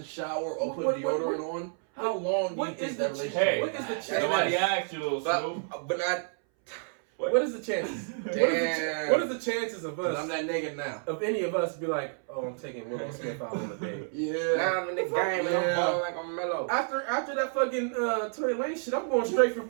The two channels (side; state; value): left; silent; 58 dB below the other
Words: shower or put What- deodorant on. How long do you what think is that the- relationship? Hey, what is the lasts? chance? nobody asked you, little Snoop. But not. What is the chances? Damn. What is the chances of 'Cause I'm us, that nigga now. of any of us, be like, oh, I'm taking Willow Smith out on a date? Yeah. Now I'm in the game and I'm Yeah. balling like I'm mellow. After that fucking Tory Lane shit, I'm going straight for